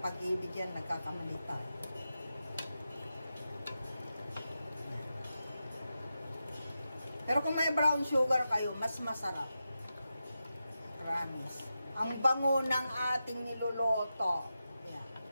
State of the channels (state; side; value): inverted; both; correlation -0.90